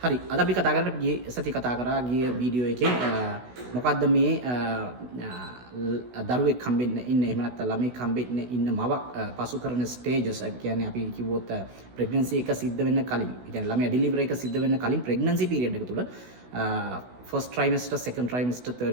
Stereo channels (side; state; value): left; late; 16 ms